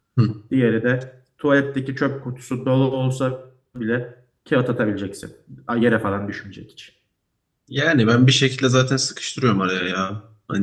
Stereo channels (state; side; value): identical; both; correlation 1.00